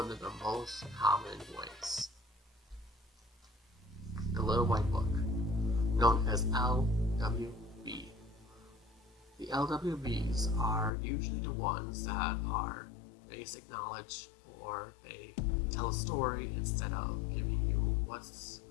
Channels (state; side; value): drops out; right; at 10.9 s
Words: of the most common ways. The Little White Book, known as LWB. The LWBs are usually the ones that are basic knowledge, or they tell a story instead of giving you what's